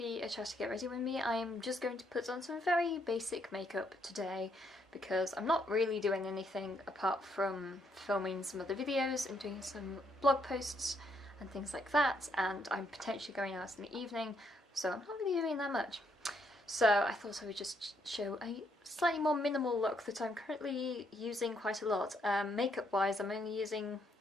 a chat to get ready with me. I am just going to put on some very basic makeup today because I'm not really doing anything apart from filming some other videos and doing some blog posts and things like that, and I'm potentially going out in the evening, so I'm not really doing that much. So I thought I would just show a slightly more minimal look that I'm currently using quite a lot. Makeup wise, I'm only using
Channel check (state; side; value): normal; both; correlation 0.73